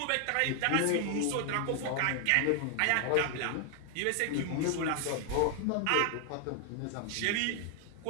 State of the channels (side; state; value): both; different; correlation 0.00